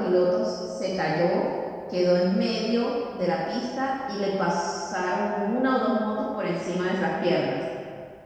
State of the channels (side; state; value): both; identical; correlation 1.00